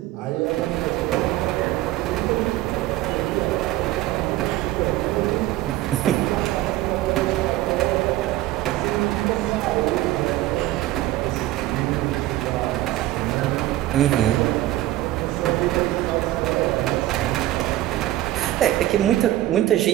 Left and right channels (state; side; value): quieter; left; 15.4 dB